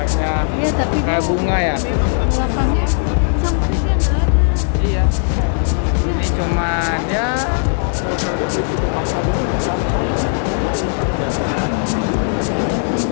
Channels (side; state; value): right; silent; digital silence